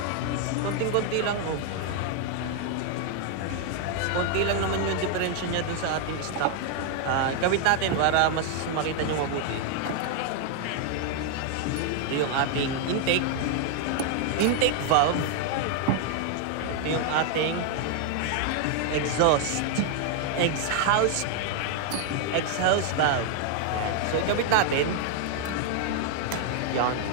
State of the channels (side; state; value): both; different; correlation 0.00